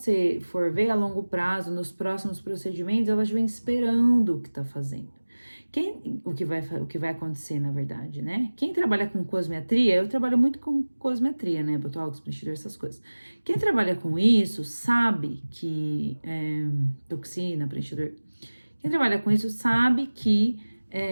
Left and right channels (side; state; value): both; inverted; correlation -1.00